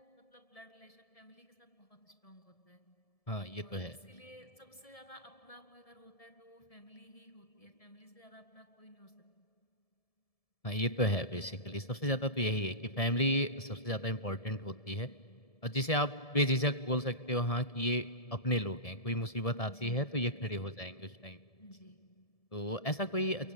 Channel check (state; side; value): late; right; 1.7 ms